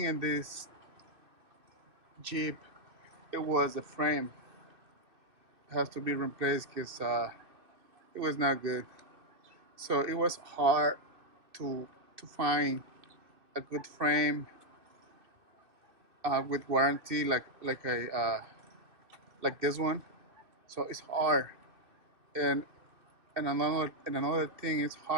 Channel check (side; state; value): left; late; 2.6 ms